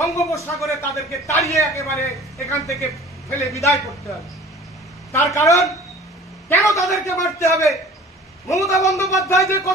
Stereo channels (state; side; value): normal; both; correlation 0.46